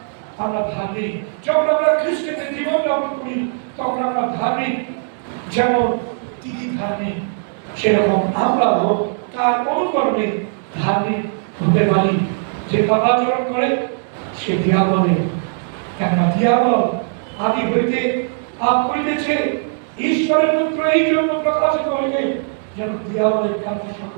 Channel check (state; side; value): silent; left; digital silence